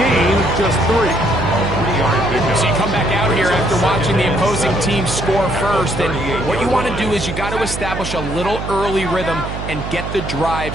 of just 3. So you come back out here after watching the opposing team score first, and what you want to do is you got to establish a little early rhythm and get the drive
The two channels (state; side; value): noise; right; hum, 7 dB below the sound